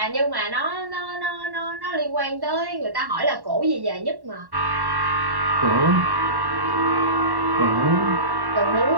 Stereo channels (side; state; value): left; late; 1.1 ms